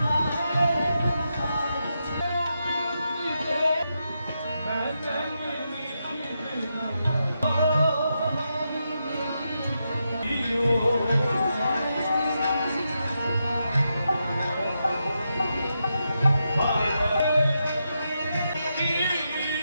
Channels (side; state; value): both; inverted; correlation -0.85